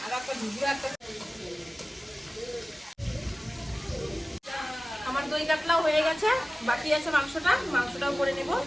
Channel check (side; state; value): both; normal; correlation 0.97